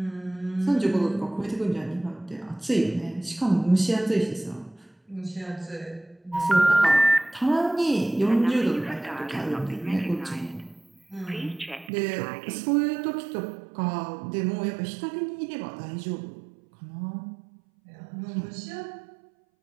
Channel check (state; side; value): drops out; left; at 11.9 s